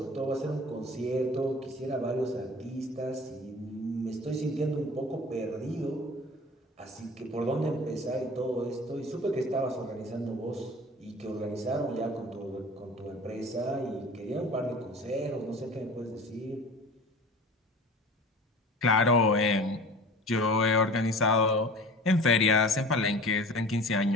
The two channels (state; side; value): normal; both; correlation 0.40